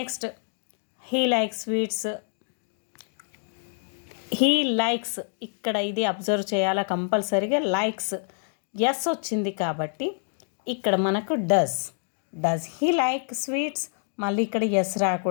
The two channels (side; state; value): right; silent; digital silence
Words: he like sweets. He likes, ఇక్కడ ఇది అబ్జర్వ్ చేయాలా కంపల్సరీగా. లైక్స్ ఎస్ వచ్చింది కాబట్టి ఇక్కడ మనకు డస్ హీ లైక్ స్వీట్స్. మళ్ళీ ఇక్కడ ఎస్